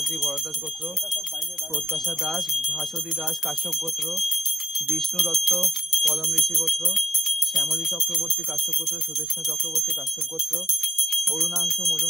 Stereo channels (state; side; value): normal; both; correlation 0.87